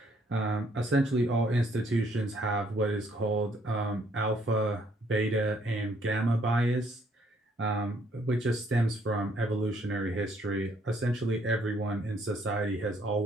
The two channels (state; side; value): normal; both; correlation 0.67